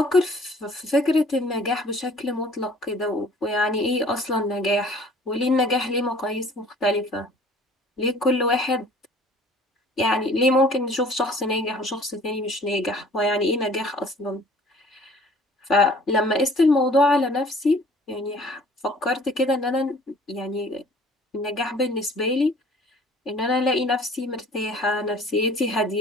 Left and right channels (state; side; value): normal; both; correlation 0.52